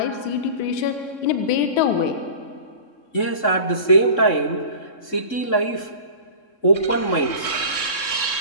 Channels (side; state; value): right; late; 3.7 ms